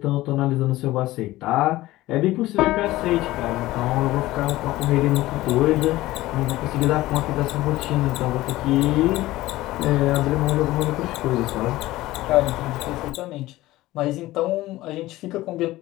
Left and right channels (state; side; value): quieter; right; 17.2 dB